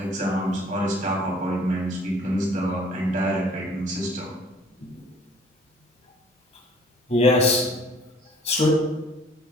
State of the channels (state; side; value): normal; both; correlation 0.54